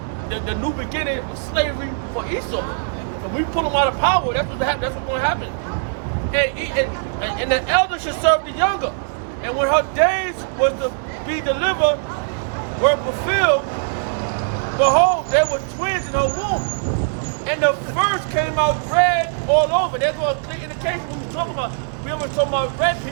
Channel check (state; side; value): silent; left; digital silence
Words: the new beginning was slavery for Esau. And we pull him out of power. That's what's going to happen. And the elder should serve the younger. And when her days was to be delivered, were fulfilled, behold, there were twins in her womb. And the first came out red all over. There's a clear indication what we're talking about. We were talking about red